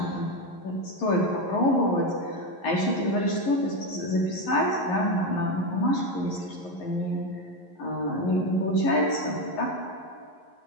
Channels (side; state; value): right; late; 11 ms